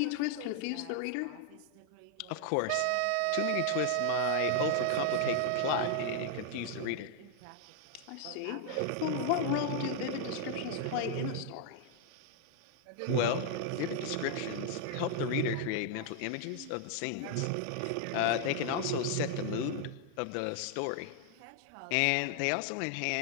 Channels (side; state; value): both; different; correlation 0.00